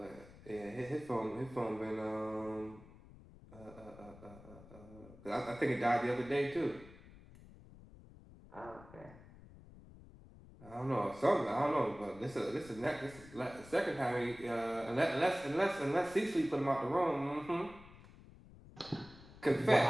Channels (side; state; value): left; noise; rumble, 20 dB below the sound